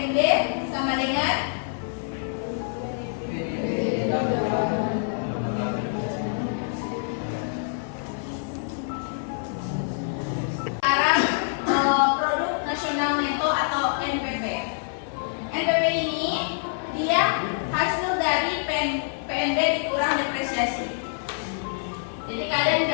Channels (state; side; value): silent; right; 57 dB below the other